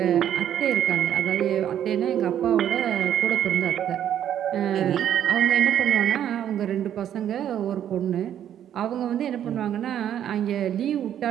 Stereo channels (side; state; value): left; quieter; 10.3 dB